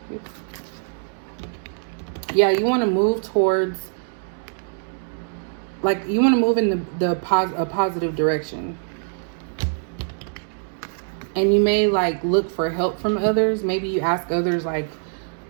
Yeah, you want to move towards, like, you want to move in a positive direction. And you may like look for help from others. Maybe you ask others like,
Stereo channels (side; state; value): left; silent; digital silence